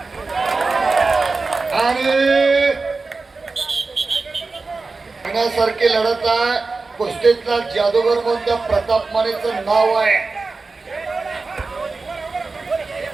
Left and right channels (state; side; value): quieter; left; 3.9 dB